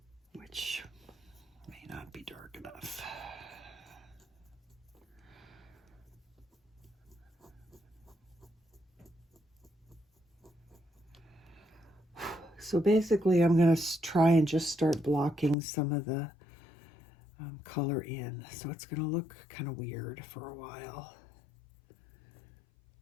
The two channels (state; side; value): drops out; right; at 15.6 s